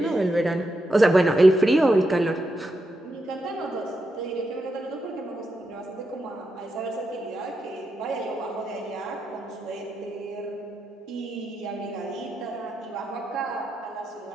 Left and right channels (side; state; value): both; normal; correlation 0.85